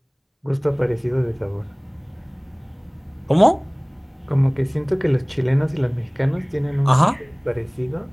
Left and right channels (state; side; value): identical; both; correlation 1.00